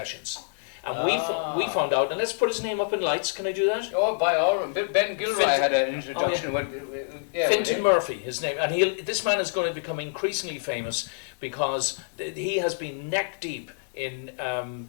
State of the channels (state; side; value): silent; right; digital silence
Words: And we found out, and let's put his name up in lights, can I do that? Oh, by all means. Ben Gilroy had an introduction. Fintan Murphy, his name. And this man is going to become increasingly famous because he has been neck deep in